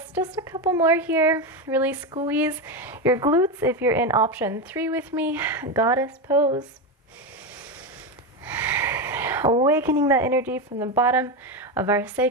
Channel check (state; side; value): normal; both; correlation 0.13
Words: Just a couple more here. Really squeeze your glutes if you're in option 3 with me. Goddess pose. Awakening that energy from the bottom of our